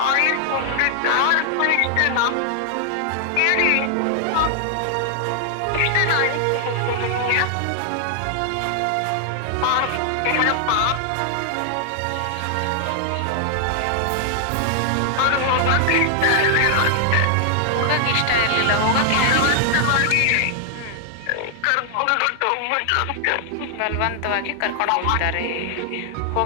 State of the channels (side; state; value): both; different; correlation 0.00